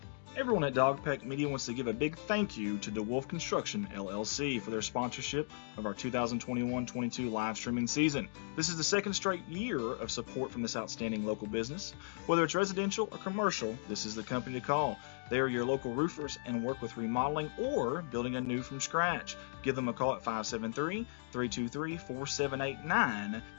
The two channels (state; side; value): silent; right; digital silence